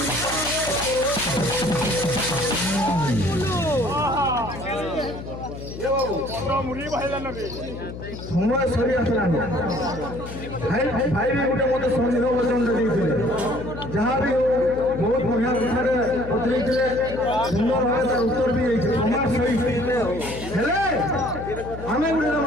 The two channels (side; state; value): left; noise; hum, 11 dB below the sound